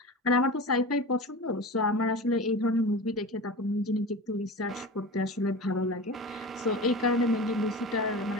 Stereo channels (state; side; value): normal; both; correlation 0.30